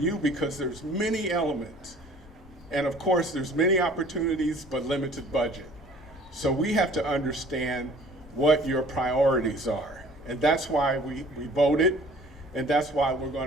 because there's many elements. And of course, there's many opportunities, but limited budget. So we have to understand what your priorities are. And that's why we voted, and that's why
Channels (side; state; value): both; normal; correlation 0.51